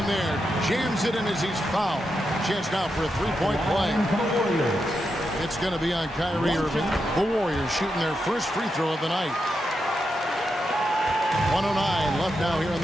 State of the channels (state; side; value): normal; both; correlation 0.86